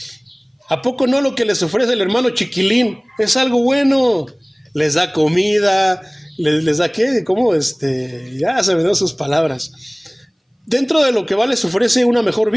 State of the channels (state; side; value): identical; both; correlation 1.00